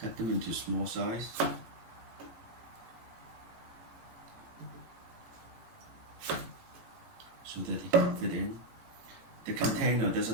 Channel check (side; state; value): left; late; 18 ms